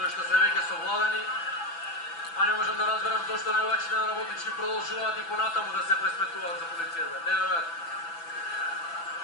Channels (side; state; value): right; late; 6.0 ms